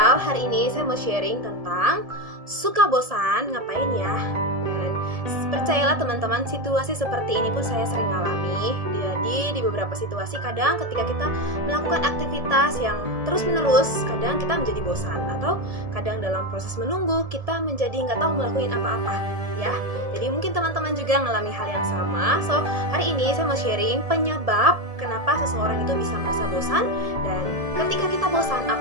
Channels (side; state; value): left; late; 1.7 ms